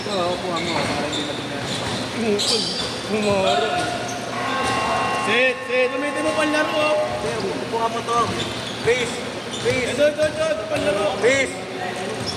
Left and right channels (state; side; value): identical; both; correlation 1.00